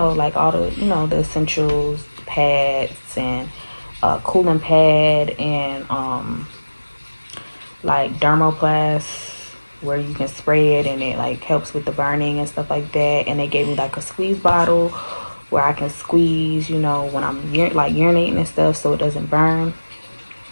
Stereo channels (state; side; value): inverted; both; correlation -1.00